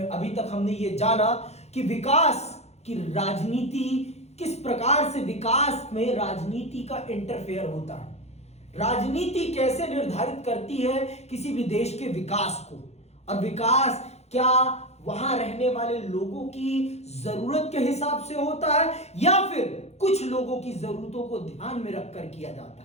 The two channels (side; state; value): right; late; 0.31 ms